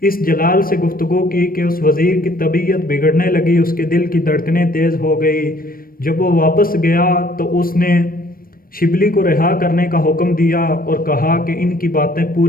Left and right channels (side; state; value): right; late; 0.42 ms